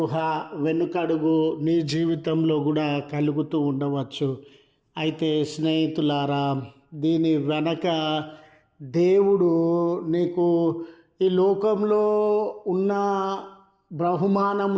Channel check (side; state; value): both; identical; correlation 1.00